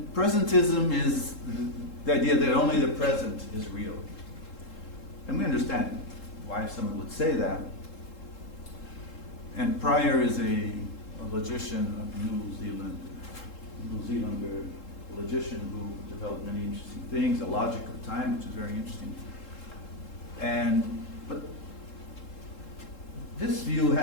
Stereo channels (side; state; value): right; late; 3.7 ms